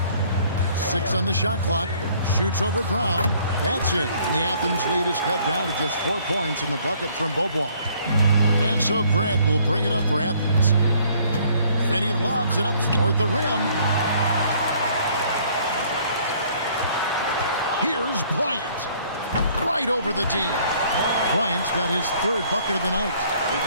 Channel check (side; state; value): both; inverted; correlation -0.60